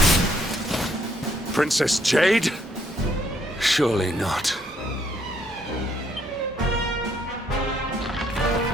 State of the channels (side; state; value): both; normal; correlation 0.70